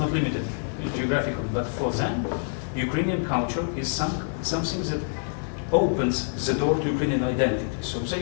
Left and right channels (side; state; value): right; silent; 61 dB below the other